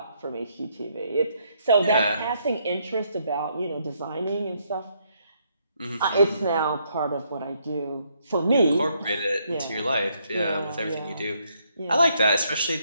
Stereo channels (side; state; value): both; inverted; correlation -0.73